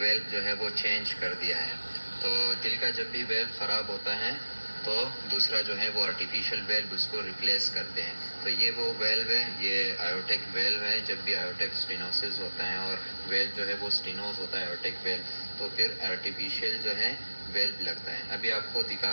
जो है वो चेंज कर दिया है। तो दिल का जब भी वेल्व ख़राब होता है तो दूसरा जो है वो आर्टिफिशियल वेल्व उसको रिप्लेस करते हैं। तो ये वो वेल्व है, ये आयोटेक वेल्व है। जब भी आयोटेक स्टेनोसिस होता है और वेल्व जो है वो स्टेनोस होता है आयोटेक वेल्व, तो फिर आर्टिफिशियल जो है वेल्व लगता है। अभी आपको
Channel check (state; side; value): inverted; both; correlation -1.00